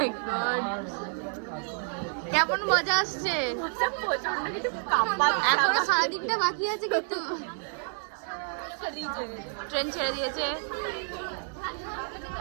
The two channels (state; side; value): silent; left; 58 dB below the other